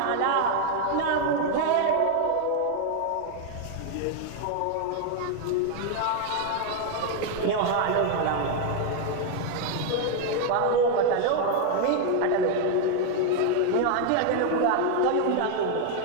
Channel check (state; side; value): different; both; correlation 0.00